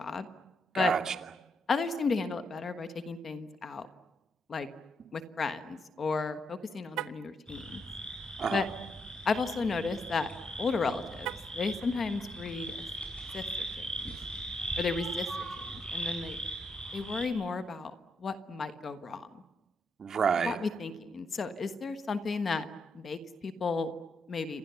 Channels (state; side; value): normal; both; correlation 0.78